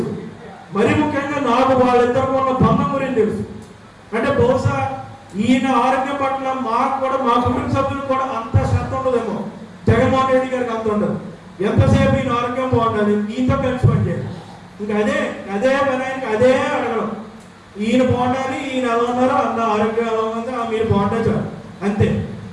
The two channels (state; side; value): identical; both; correlation 1.00